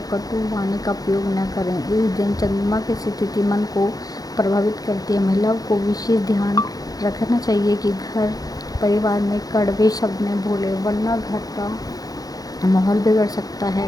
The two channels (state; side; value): late; right; 0.18 ms